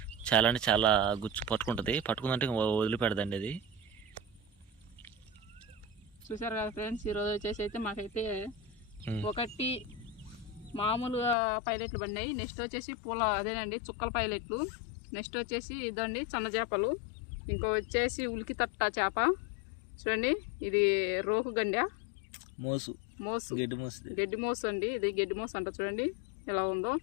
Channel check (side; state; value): right; drops out; at 11.4 s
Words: చాలా అంటే చాలా గుచ్చు పట్టుకుంటుంది, పట్టుకుందంటే వదిలిపెడదండి అది. చూసారు కదా ఫ్రెండ్స్, ఈరోజు వచ్చేసి అయితే మాకైతే 1 మామూలుగా పైలెట్లు పడినాయి. నెక్స్ట్ వచ్చేసి అదేనండి చుక్కల పైలెట్లు. నెక్స్ట్ వచ్చేసి ఇదండి సన్న చేపలు. ఇంకో వచ్చేసి ఉలికి తట్ట చేప. చూడండి ఇది రోకు గండ మోసు గడ్డి మోసు అండి. ఇది గడ్డి మోసు అంట. చూడండి ఎలా ఉందో.